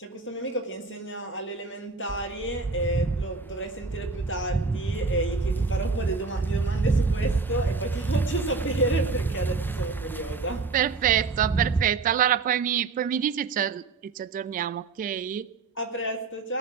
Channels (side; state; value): left; quieter; 4.3 dB